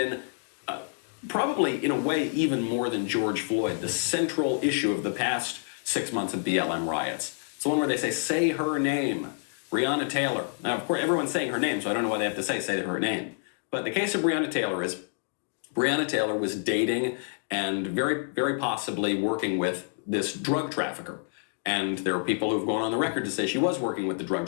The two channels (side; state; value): right; silent; 59 dB below the other